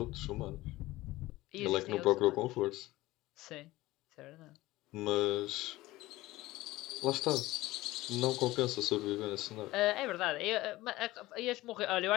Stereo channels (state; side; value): quieter; right; 18.1 dB